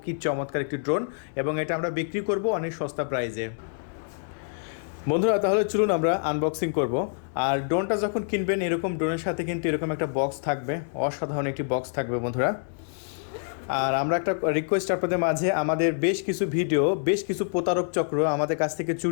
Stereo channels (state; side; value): silent; right; digital silence